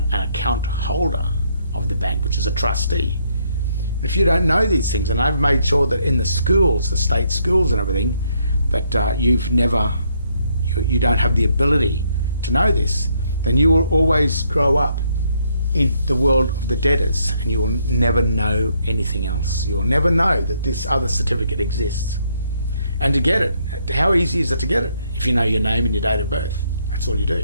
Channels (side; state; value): both; inverted; correlation -0.72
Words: account holder of the bank, which is a trustee. If you don't know these things, and I've made sure that in the schools, the state schools and everything, that you don't have the ability to know this, then you will always grow up in the world of the debtors, and you will never know anything else. You'll never know that this other certificate exists. And to get it, how easy is it to get it? If you know your name and your date of birth, that's all you